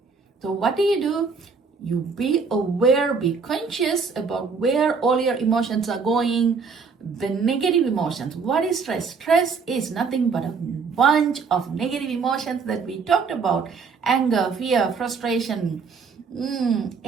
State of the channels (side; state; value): left; quieter; 5.2 dB